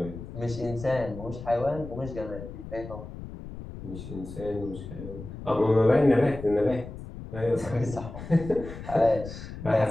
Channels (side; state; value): left; noise; rumble, 11 dB below the sound